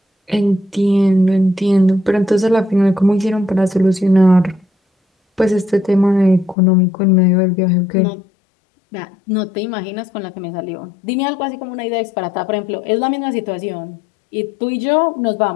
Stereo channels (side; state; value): right; drops out; at 6.6 s